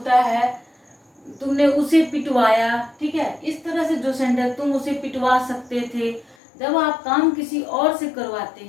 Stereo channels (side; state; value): right; drops out; at 6.4 s